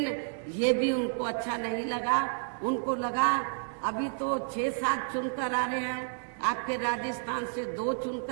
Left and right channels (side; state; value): left; silent; digital silence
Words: ये भी उनको अच्छा नहीं लगा। उनको लगा अभी तो 6-7 चुनकर आ रहे हैं, आपके राजस्थान से 2